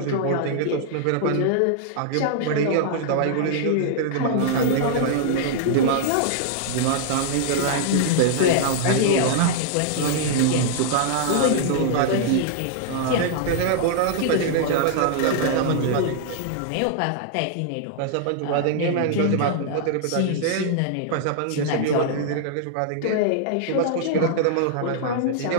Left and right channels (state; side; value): different; both; correlation -0.01